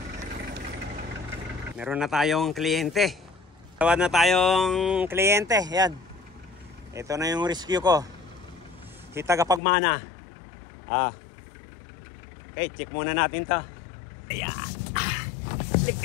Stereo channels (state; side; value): drops out; right; at 9.6 s